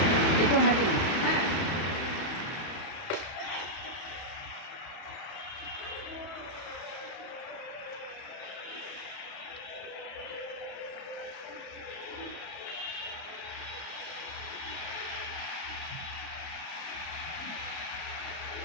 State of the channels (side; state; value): right; late; 31 ms